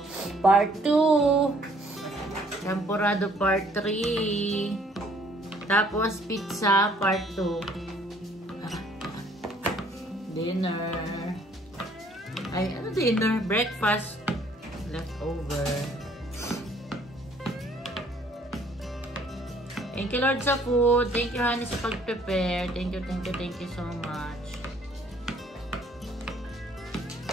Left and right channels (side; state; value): both; normal; correlation 0.61